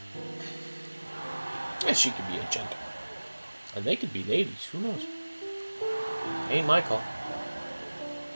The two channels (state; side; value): inverted; both; correlation -1.00